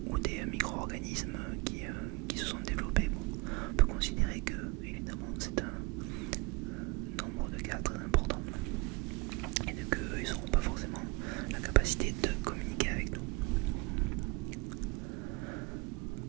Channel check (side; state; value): left; quieter; 25.2 dB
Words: ou des micro-organismes qui se sont développés, bon, on peut considérer que évidemment c'est un nombre de cas très important et qu'ils n'auront pas forcément la capacité de communiquer avec nous.